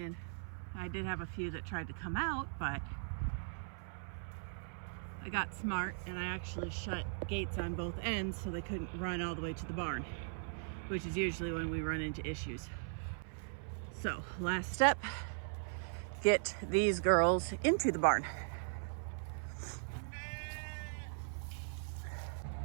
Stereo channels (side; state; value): left; silent; 52 dB below the other